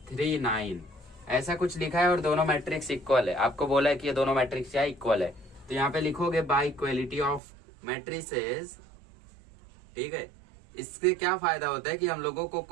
ऐसा कुछ लिखा है और दोनों मैट्रिक्स इक्वल है। आपको बोला है कि ये दोनों मैट्रिक्स क्या इक्वल है, तो यहाँ पे लिखोगे बाय इक्वलिटी ऑफ मैट्रिसेस। ठीक है, इससे क्या फायदा होता है कि हम लोगों को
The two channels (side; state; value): left; drops out; at 7.4 s